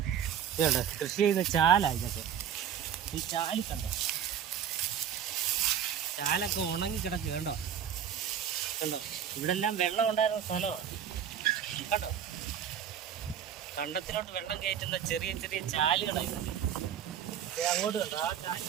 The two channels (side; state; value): left; quieter; 9.0 dB